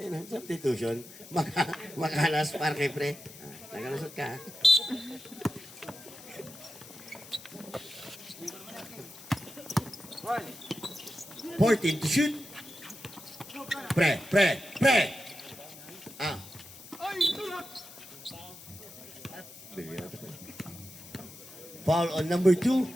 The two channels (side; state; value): left; noise; hiss, 17 dB below the sound